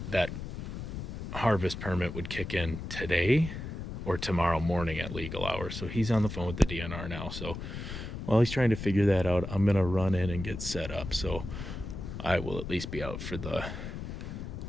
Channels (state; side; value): noise; left; rumble, 7 dB below the sound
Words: that harvest permit would kick in today or tomorrow morning at legal hours. So he's on the phone with the DNR now. So while he's trying to figure that out, I'm going to run in and get set up. So I will at least be out for the